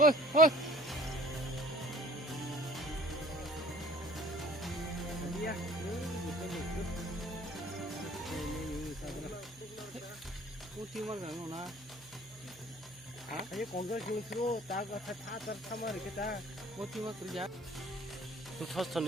헐. Iya, 꼬티만 가는 나. 아니 공격 중수로 다가 다 참아 이렇게 다. 꼬티만 그러자. 터스턴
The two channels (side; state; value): right; noise; hum, 21 dB below the sound